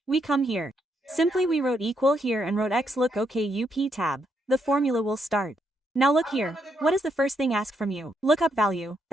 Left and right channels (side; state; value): both; normal; correlation 0.77